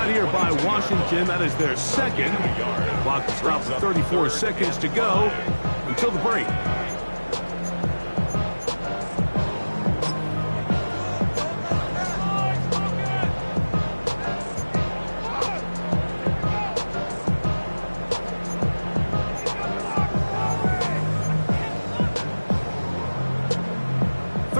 here by Washington. That is their 2nd. Clock is dropped to 34 seconds to go until the break.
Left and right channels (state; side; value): inverted; both; correlation -1.00